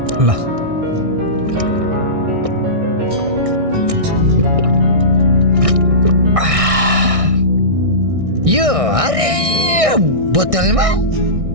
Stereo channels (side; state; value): left; late; 1.6 ms